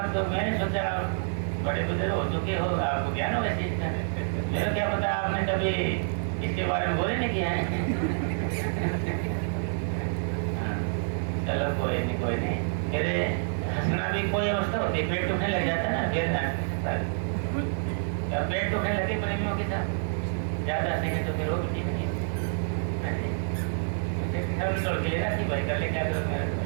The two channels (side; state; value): left; silent; 59 dB below the other